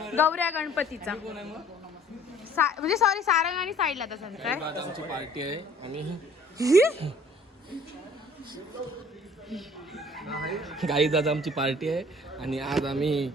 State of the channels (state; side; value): normal; both; correlation 0.54